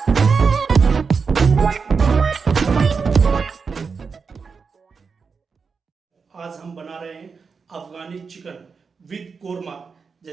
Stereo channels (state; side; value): quieter; left; 5.3 dB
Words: आज हम बना रहे हैं अफगानी चिकन विद कोरमा।